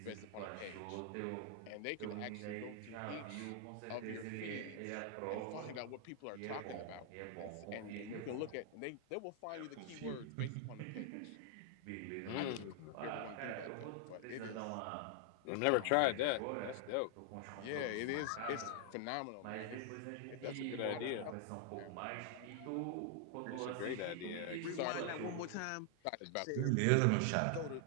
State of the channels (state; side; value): different; both; correlation 0.00